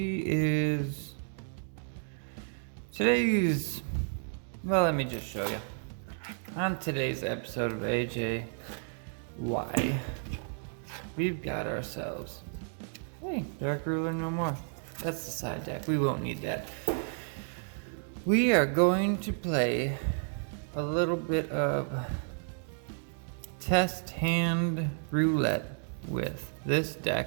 well, let me just show you. On today's episode of AJ Why, we've got ourselves Dark Ruler no more. That's the side deck. We won't need that. We are going to play a little bit of test hand roulette with this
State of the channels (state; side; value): silent; left; 56 dB below the other